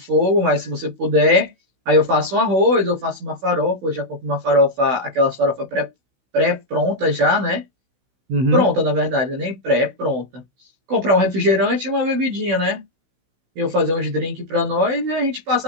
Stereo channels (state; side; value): late; left; 16 ms